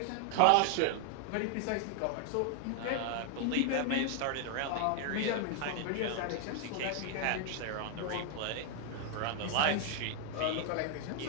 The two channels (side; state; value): both; different; correlation 0.00